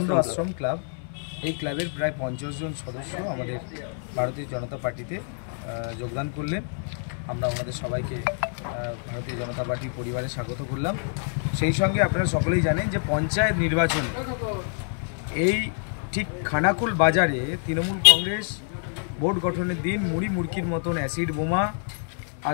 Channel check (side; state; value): right; silent; 61 dB below the other